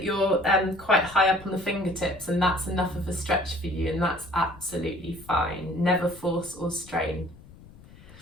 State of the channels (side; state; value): left; noise; rumble, 21 dB below the sound